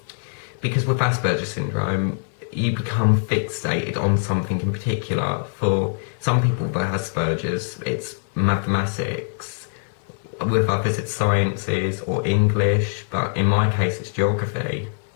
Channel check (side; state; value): right; silent; digital silence